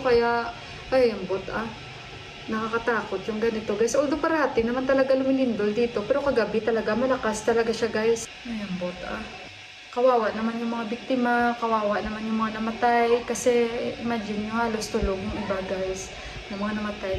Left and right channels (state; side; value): identical; both; correlation 1.00